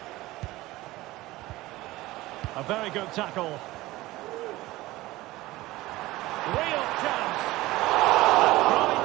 A very good tackle. Real chance. Tried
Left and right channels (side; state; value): left; quieter; 18.4 dB